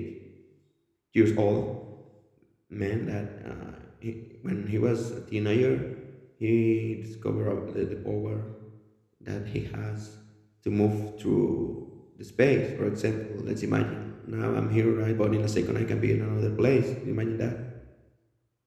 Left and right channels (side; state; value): both; identical; correlation 1.00